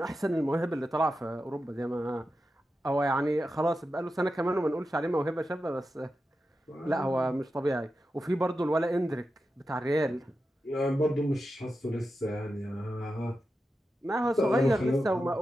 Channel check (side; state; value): both; normal; correlation 0.90